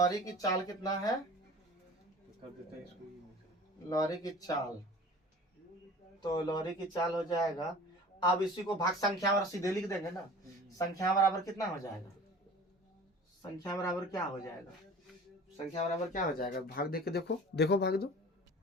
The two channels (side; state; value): both; normal; correlation 0.42